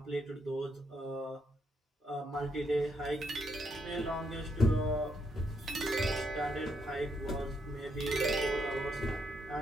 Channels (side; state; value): both; normal; correlation 0.77